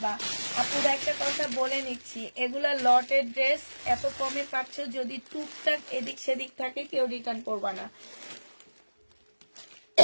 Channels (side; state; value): both; inverted; correlation -1.00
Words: আপুরা একটা কথা বলে নিচ্ছি, এগুলা লটের ড্রেস, এত কমে পাচ্ছ, যদি টুকটাক এদিক সেদিক থাকে কেউ রিটার্ন করবা না।